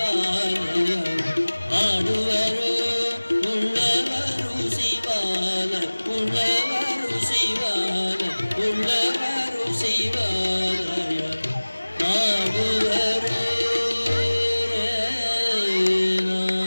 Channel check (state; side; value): inverted; both; correlation -1.00